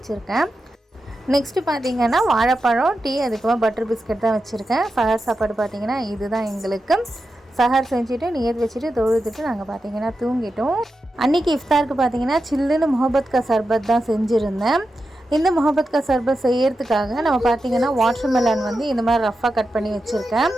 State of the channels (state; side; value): normal; both; correlation 0.90